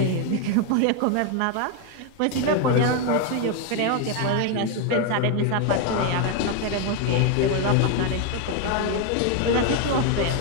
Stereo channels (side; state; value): both; different; correlation 0.01